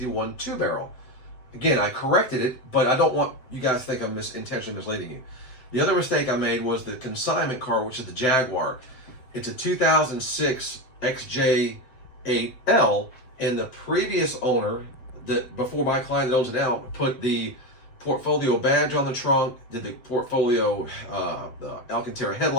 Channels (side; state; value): right; late; 7.8 ms